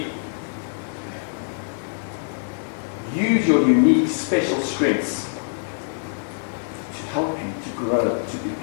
Use your unique, special strengths to help you to grow, to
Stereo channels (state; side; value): silent; right; 63 dB below the other